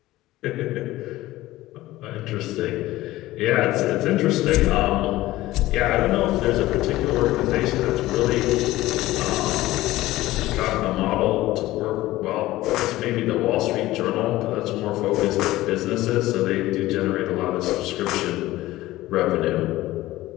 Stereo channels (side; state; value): right; quieter; 16.9 dB